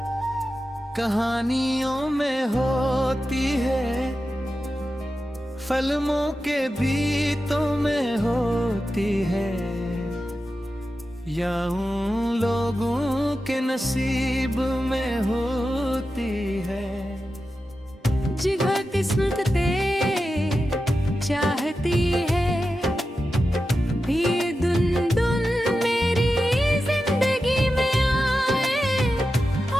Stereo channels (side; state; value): both; normal; correlation 0.91